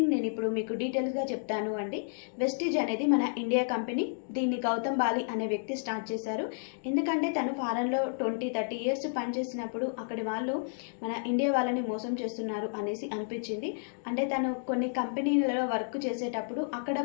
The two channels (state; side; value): silent; right; digital silence